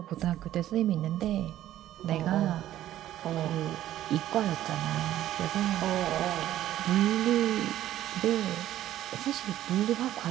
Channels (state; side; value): quieter; left; 13.0 dB